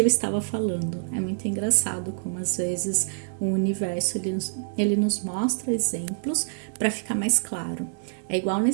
estava falando. É muito engraçado como às vezes o universo ele nos mostra exemplos para ficar mais claro. É igual na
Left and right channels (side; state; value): left; silent; digital silence